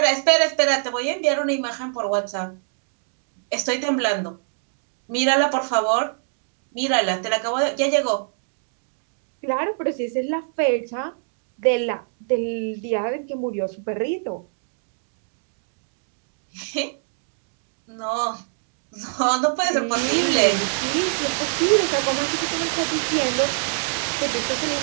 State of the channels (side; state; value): left; silent; digital silence